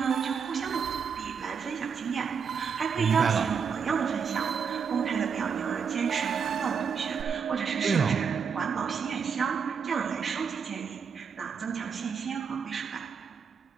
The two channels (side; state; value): left; quieter; 6.4 dB